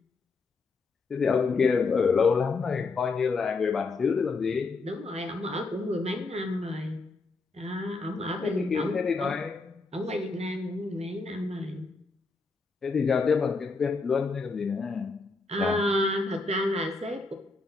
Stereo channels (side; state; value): right; quieter; 3.9 dB